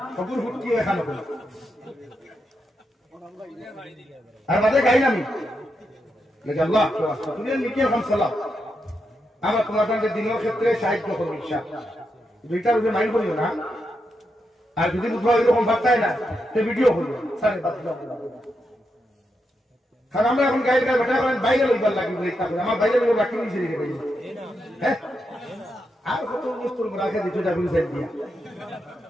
হগুর হুটকি এখানে আর মাঝে গাই আমি আল্লাহ তুমি নিকে এখন সালাম আমরা তোমার সঙ্গে দিনের ক্ষেত্রে সাহায্য করবো ইচ্ছা দুইটার উপরে মাইন্ড করিও না আর যদি বুধবার এরকম ভাবতাই না সে ভিডিও করবো সাড়ে 5 কারণ আমরা এখন গাইড গায়ে বেটা করেন বাইরে লইবার লাগবে আমার বাইরে লোক রাখি নিয়েছে হ্যাঁ আর কত বস্তুর রাখা দিত দিয়া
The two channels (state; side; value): normal; both; correlation 0.84